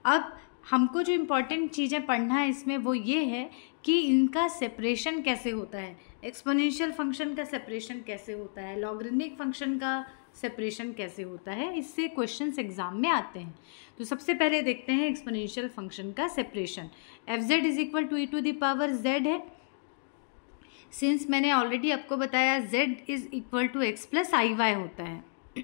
अब हमको जो इम्पोर्टेंट चीज़ें पढ़ना है इसमें वो ये है कि इनका सेपरेशन कैसे होता है, एक्सपोनेंशियल फंक्शन का सेपरेशन कैसे होता है, लॉगरिथमिक फंक्शन का सेपरेशन कैसे होता है, इससे क्वेश्चंस एग्जाम में आते हैं। तो सबसे पहले देखते हैं एक्सपोनेंशियल फंक्शन का separation. fz is equal to e to the power z है। सिंस मैंने ऑलरेडी आपको बताया z is equal to x plus i y होता है।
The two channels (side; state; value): right; silent; digital silence